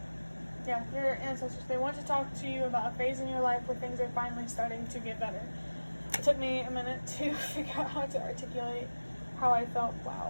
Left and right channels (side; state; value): both; inverted; correlation -1.00